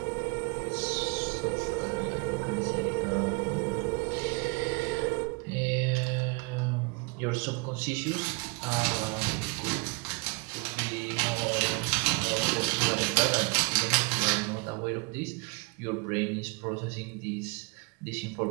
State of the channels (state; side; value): quieter; left; 30.6 dB